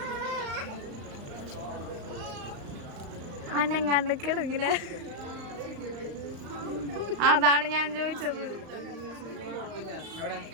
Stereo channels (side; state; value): left; late; 35 ms